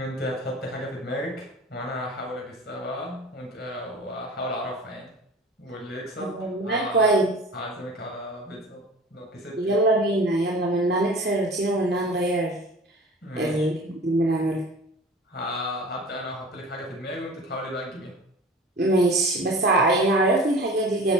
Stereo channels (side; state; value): both; normal; correlation 0.40